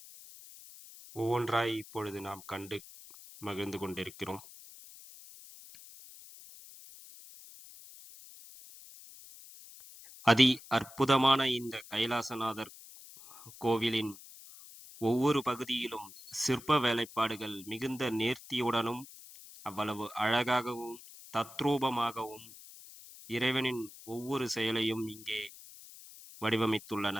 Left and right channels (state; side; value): noise; left; hiss, 18 dB below the sound